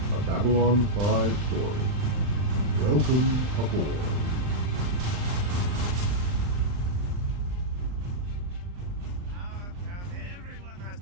a Babylon 5 story. Welcome aboard. Come, everyone has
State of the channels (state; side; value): late; left; 39 ms